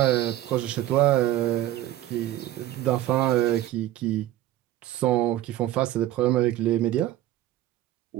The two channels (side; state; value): left; quieter; 14.0 dB